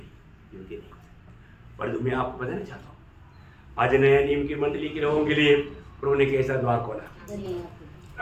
पर मैं आपको बताना चाहता हूँ, आज नया नियम की मंडली के लोगों के लिए प्रभु ने कैसा द्वार खोला।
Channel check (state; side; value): identical; both; correlation 1.00